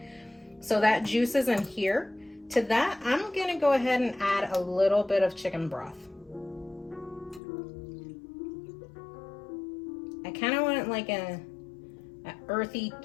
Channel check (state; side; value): drops out; right; at 7.4 s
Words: So that juice is in here. To that, I'm going to go ahead and add a little bit of chicken broth. I kind of want like a earthy